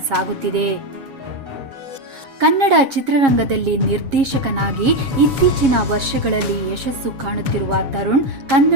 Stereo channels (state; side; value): late; left; 7.3 ms